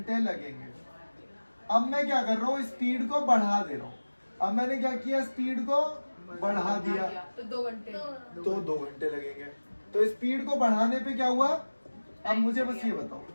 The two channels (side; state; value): both; inverted; correlation -1.00